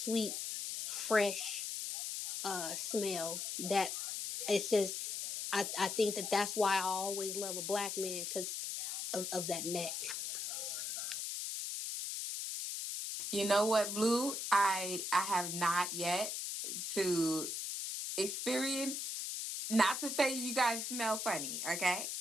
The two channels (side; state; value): left; noise; hiss, 3 dB below the sound